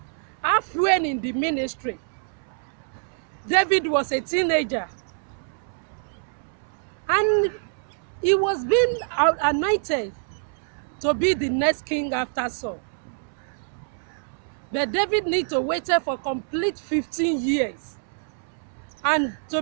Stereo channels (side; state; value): left; silent; 61 dB below the other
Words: halfway in the ministry. David was a teenager and he was being anointed to be the next king after Saul. But David needed to wait for complete 15 years. And to